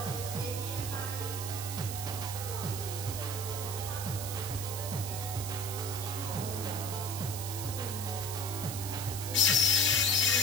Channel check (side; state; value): right; noise; hiss, 6 dB below the sound